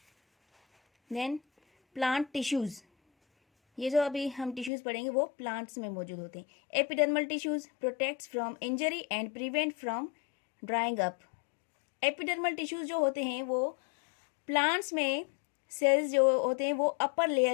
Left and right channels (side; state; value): right; drops out; at 4.7 s